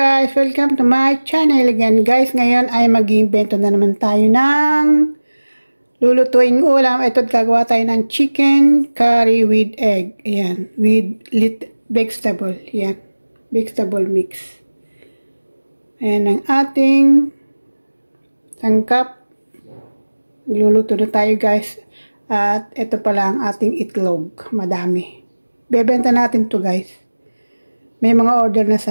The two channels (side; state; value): both; inverted; correlation -1.00